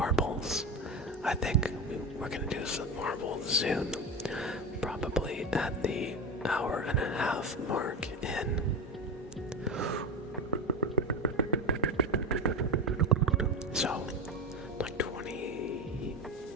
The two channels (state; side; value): normal; both; correlation 0.20